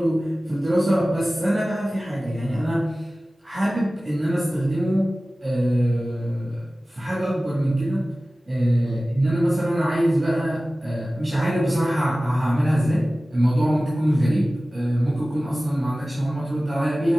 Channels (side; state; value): both; normal; correlation 0.97